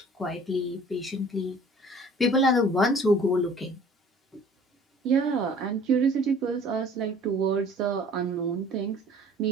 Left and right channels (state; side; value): normal; both; correlation 0.50